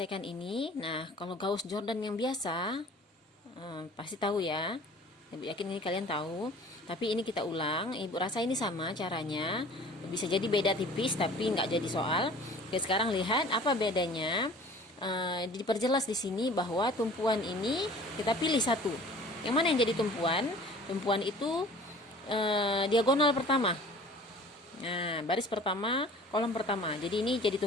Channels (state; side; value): normal; both; correlation 0.47